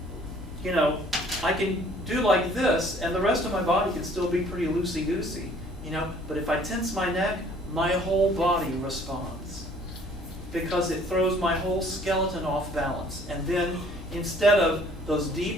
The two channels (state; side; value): normal; both; correlation 0.56